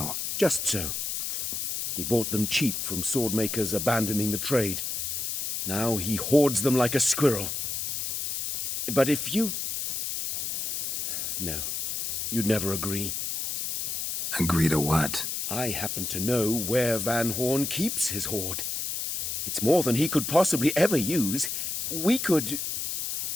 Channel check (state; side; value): noise; left; hiss, 2 dB below the sound